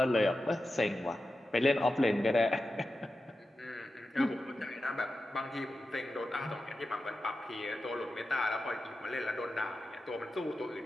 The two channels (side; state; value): both; normal; correlation 0.92